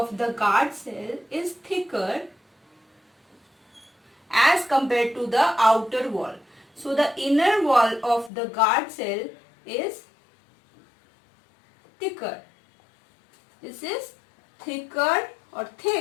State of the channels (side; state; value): right; drops out; at 8.3 s